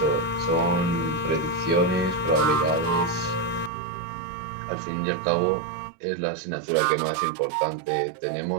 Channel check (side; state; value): left; drops out; at 3.7 s